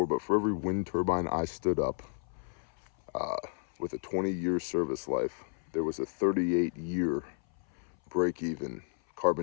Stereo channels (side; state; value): right; silent; 56 dB below the other